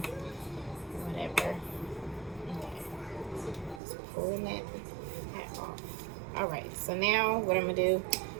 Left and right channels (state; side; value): drops out; left; at 3.8 s